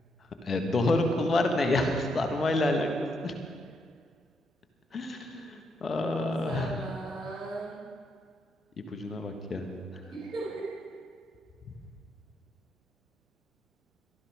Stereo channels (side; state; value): both; normal; correlation 0.78